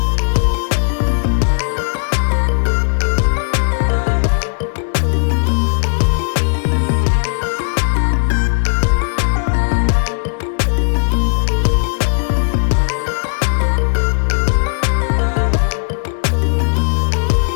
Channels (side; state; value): right; silent; digital silence